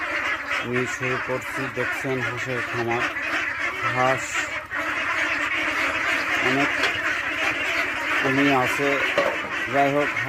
নিয়ে শুরু করছি। দেখছেন হাঁসের খামার, হাঁস অনেক নিয়ে আছে। যাই হোক,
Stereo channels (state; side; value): identical; both; correlation 1.00